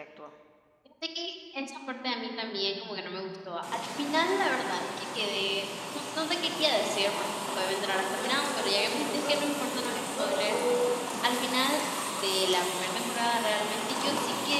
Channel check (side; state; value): both; identical; correlation 1.00